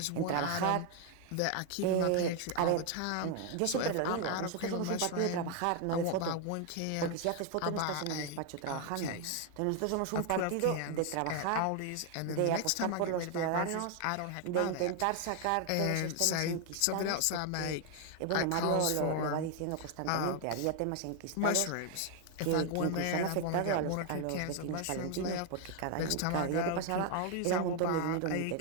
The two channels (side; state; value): both; different; correlation 0.01